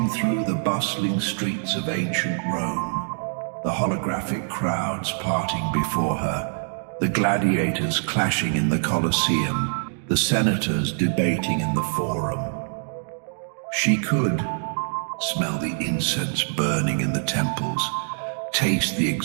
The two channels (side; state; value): left; silent; digital silence